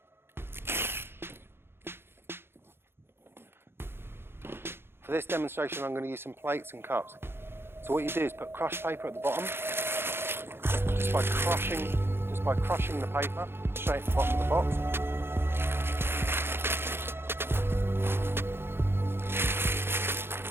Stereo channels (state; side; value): late; left; 0.11 ms